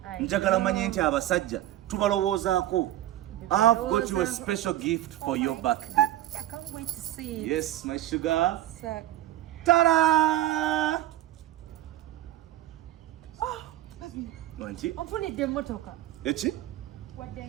Njagala manye nti abasajja tubalowoozaako. I've got you a special gift for your birthday. I can't wait to see it. Yes, my sugar. So, Ta-da! Wanti? onfunidde emmotoka. Eki? Wadde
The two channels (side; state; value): left; quieter; 13.9 dB